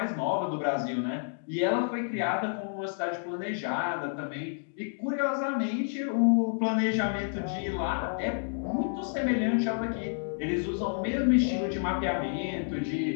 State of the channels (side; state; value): right; silent; digital silence